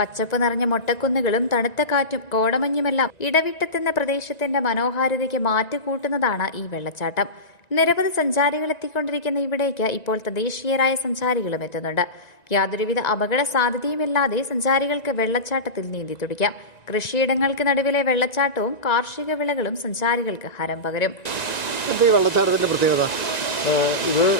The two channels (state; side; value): late; right; 1.9 ms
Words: നിറഞ്ഞ മൊട്ടക്കുന്നുകളും തണുത്ത കാറ്റും കോടമഞ്ഞുമെല്ലാം ഇടവിട്ടെത്തുന്ന പ്രദേശത്തിന്റെ മനോഹാരിതയ്ക്ക് മാറ്റുകൂട്ടുന്നതാണ് ഈ വെള്ളച്ചാട്ടം. നിരവധി സഞ്ചാരികൾ എത്തിക്കൊണ്ടിരിക്കുന്ന ഇവിടേക്ക് ഇപ്പോൾ തദ്ദേശീയരായ സഞ്ചാരികളും എത്തുന്നുണ്ട്. യാതൊരുവിധ അപകട സാധ്യതയുമില്ലാതെ സഞ്ചാരികൾക്ക് വെള്ളച്ചാട്ടത്തിൽ നീന്തി തുടിക്കാം. കൃഷിയിടങ്ങൾക്ക് നടുവിലെ വെള്ളച്ചാട്ടവും കാർഷിക വിളകളും സഞ്ചാരികൾക്ക് ഹരം പകരും. ഈ വെള്ളച്ചാട്ടത്തിൻ്റെ പ്രത്യേകത ഇത്